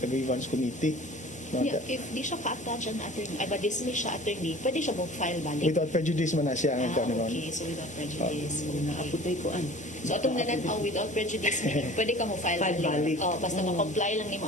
grievance committee. No? Yeah, if di siya ka-attach ang attorney, ay ba-dismiss siya attorney, pwede siya mag-file balik. Without prejudice man na siya ang kanon. Okay, so without prejudice. Okay. naaputay ko an So atong nananaw without prejudice, meaning pwede ka mo file File balik. balik. Oh, basta ma-comply lang ni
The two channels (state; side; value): normal; both; correlation 0.44